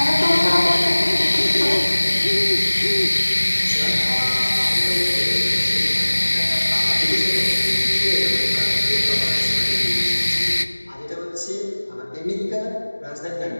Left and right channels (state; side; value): inverted; both; correlation -1.00